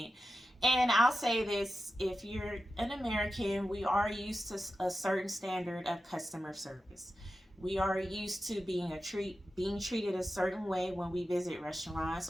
And I'll say this, if you're an American, we are used to a certain standard of customer service. We are used to being treated a certain way when we visit restaurants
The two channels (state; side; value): normal; both; correlation 0.92